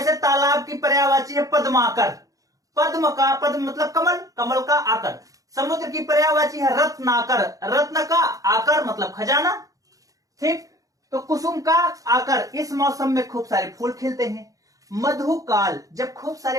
तालाब की पर्यायवाची है पद्माकर, पद्म का पद्म मतलब कमल, कमल का आकर। समुद्र की पर्यायवाची है रत्नाकर, रत्न का आकर मतलब खजाना। ठीक, तो कुसुम का आकर, इस मौसम में खूब सारे फूल खिलते हैं। मधुकाल, जब खूब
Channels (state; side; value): late; left; 0.17 ms